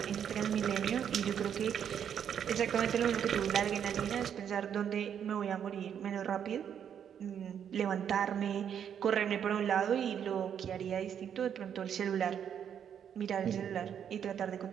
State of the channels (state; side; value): quieter; left; 8.6 dB